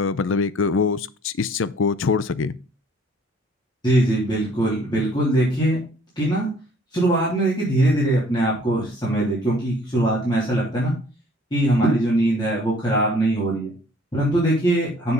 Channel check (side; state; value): both; normal; correlation 0.56